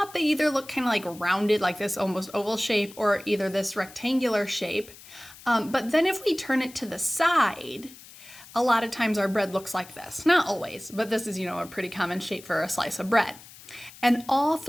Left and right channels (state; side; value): noise; left; hiss, 19 dB below the sound